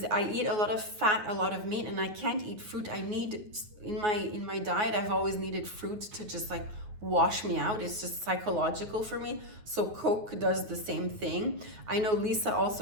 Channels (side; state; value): left; late; 9.5 ms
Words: I eat a lot of fat, a lot of meat, and I can't eat fruit. I need, in my diet, I've always needed fruit to just like wash me out. It's just psychological for me. So Coke does the same thing. I know Lisa